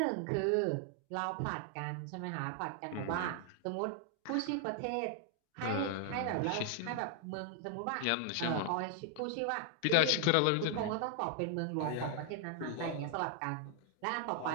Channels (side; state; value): both; different; correlation 0.00